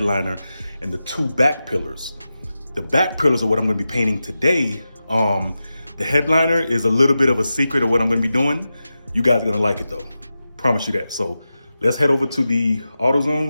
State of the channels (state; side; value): inverted; both; correlation -0.92